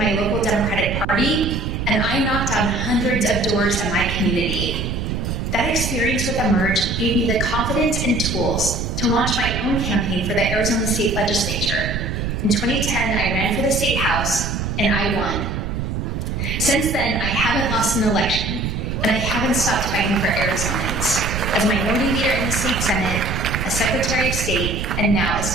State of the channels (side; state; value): right; noise; rumble, 3 dB below the sound